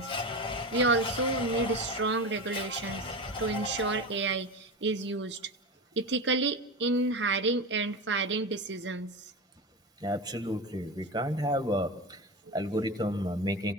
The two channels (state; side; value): normal; both; correlation 0.23